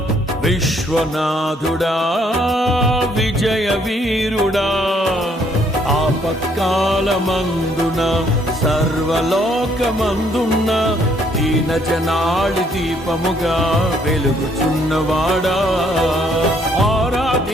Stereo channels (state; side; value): normal; both; correlation 0.67